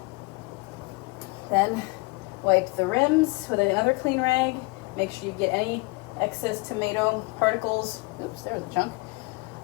Then wipe the rims with another clean rag. Make sure you get any excess tomato particles, oops, there was a chunk,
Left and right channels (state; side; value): quieter; right; 26.0 dB